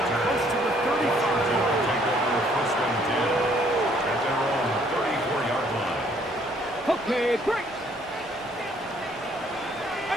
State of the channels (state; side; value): normal; both; correlation 0.63